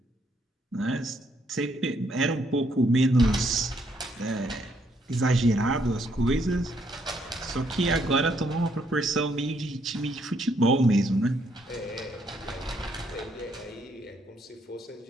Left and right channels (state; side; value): normal; both; correlation 0.71